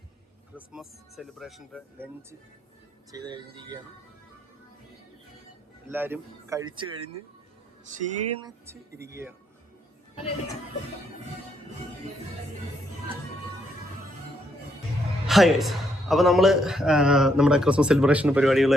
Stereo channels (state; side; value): normal; both; correlation 0.74